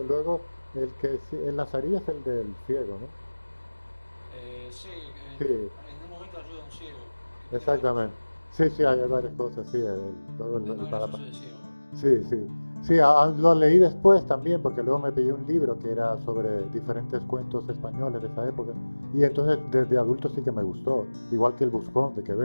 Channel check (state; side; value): inverted; both; correlation -1.00